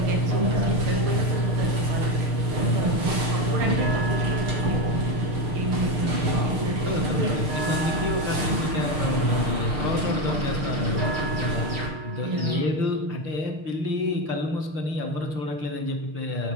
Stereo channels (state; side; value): late; left; 6.5 ms